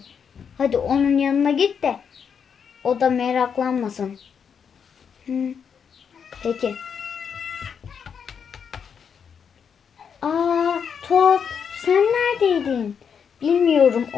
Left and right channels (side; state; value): right; quieter; 7.0 dB